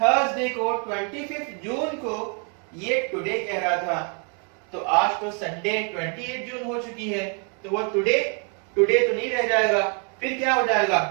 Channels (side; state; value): left; quieter; 38.9 dB